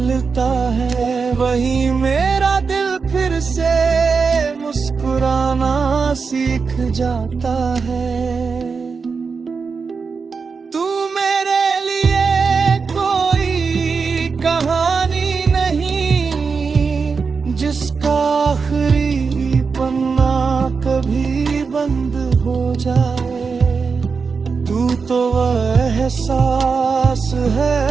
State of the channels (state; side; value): quieter; left; 5.1 dB